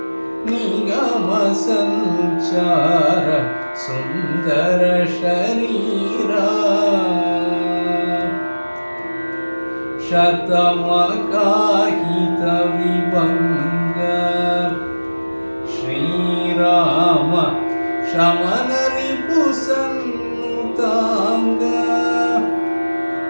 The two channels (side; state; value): both; inverted; correlation -1.00